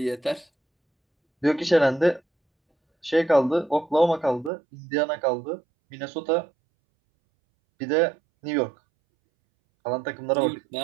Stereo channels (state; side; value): drops out; left; at 4.5 s